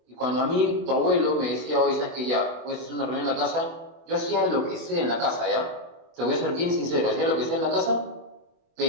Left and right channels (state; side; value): late; left; 24 ms